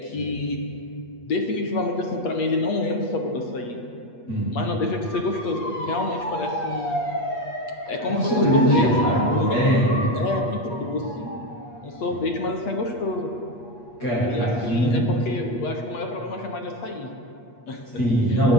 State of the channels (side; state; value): right; late; 8.4 ms